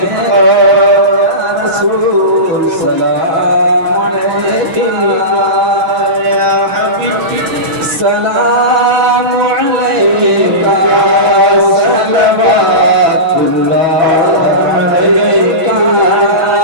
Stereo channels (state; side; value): late; left; 6.0 ms